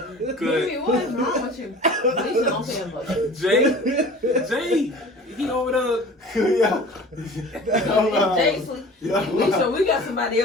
Mimi, what is wrong with you? Alicia don't say much. Jay, he over there. Jay sleep. Alicia, we got somebody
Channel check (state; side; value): normal; both; correlation 0.42